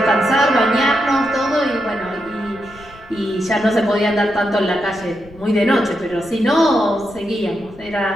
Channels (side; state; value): left; noise; rumble, 22 dB below the sound